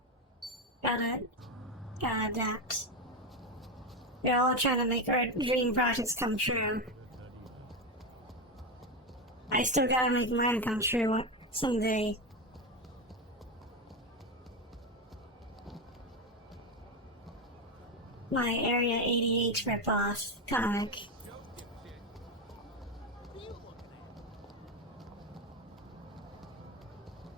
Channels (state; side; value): normal; both; correlation 0.13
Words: Gotta adapt. We're all trying to make our dream projects come true. I still gotta make mine come true someday. My Area 88 ripoff comic.